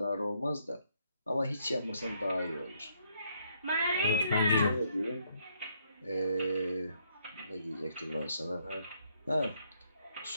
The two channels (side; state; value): both; inverted; correlation -0.72